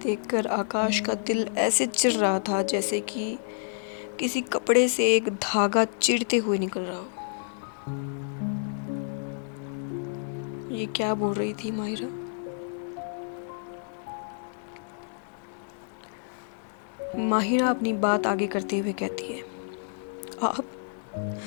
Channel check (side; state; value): right; silent; digital silence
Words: आकाश का दिल ऐसे चिर रहा था जैसे कि किसी कपड़े से एक धागा चिरते हुए निकल रहा हो। ये क्या बोल रही थी माहिरा? माहिरा अपनी बात आगे करते हुए कहती है, आप